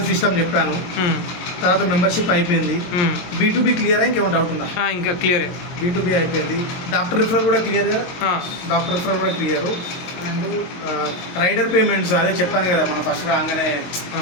సిస్టమ్ చెప్పాను. తర్వాత మెంబర్షిప్ అయిపోయింది. B2B క్లియర్ ఇంకేమైనా డౌట్ ఉందా? ఇంకా క్లియర్. B2B అయిపోయింది. డాక్టర్ రిఫరల్ కూడా క్లియర్ కదా, డాక్టర్ రిఫరల్ కూడా క్లియర్. అండ్ రైడర్ పేమెంట్స్ అదే చెప్పాను కదా మనం ఫస్ట్ రాగానే.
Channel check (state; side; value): late; right; 23 ms